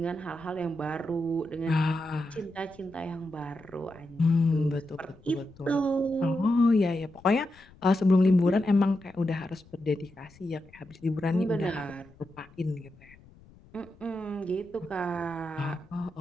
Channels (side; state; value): left; noise; rumble, 25 dB below the sound